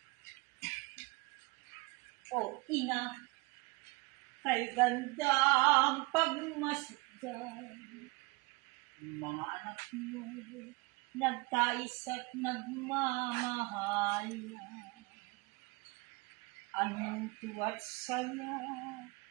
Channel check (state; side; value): quieter; left; 26.0 dB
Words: O ina, kay gandang pagmasdan, mga anak mo, nagtais at nagmamahalan. Anong tuwa't saya